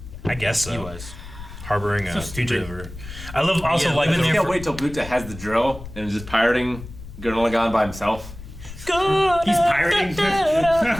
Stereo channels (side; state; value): left; noise; rumble, 14 dB below the sound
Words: I guess so. He was. Harboring a So stupid. fugitive. I love also Yeah, like living I there can't wait till Buta has the drill and is just pirating Gurren Lagann by himself. He's pirating.